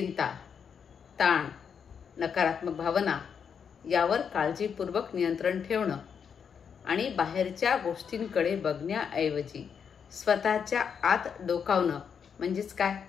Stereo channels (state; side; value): quieter; right; 7.0 dB